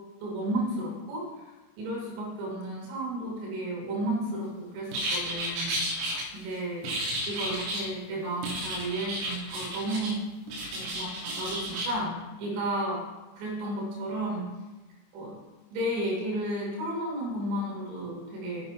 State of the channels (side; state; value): left; late; 26 ms